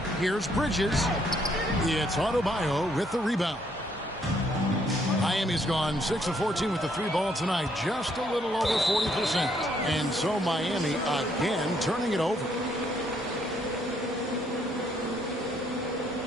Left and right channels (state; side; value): normal; both; correlation 0.70